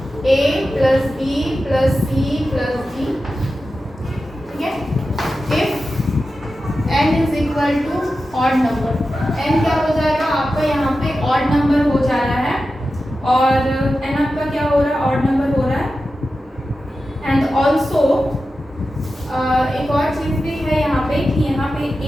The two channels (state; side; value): normal; both; correlation 0.92